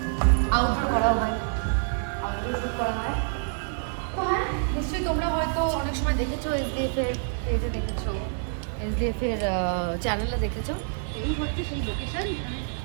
আউটডোর করা হয়, আউটডোর শ্যুট করা হয়। তো হ্যাঁ, নিশ্চয়ই তোমরা হয়তো অনেক সময় দেখেছো, এসডিএফের পেজে দেখেছো, এসডিএফের চ্যানেলে দেখেছো। এই হচ্ছে সেই লোকেশন,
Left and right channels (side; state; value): left; silent; digital silence